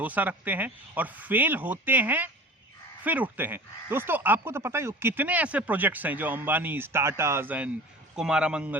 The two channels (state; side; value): normal; both; correlation 0.39